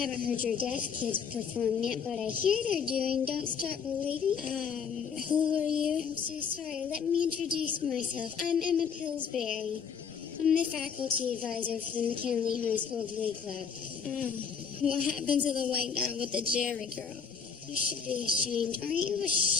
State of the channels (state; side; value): quieter; right; 6.5 dB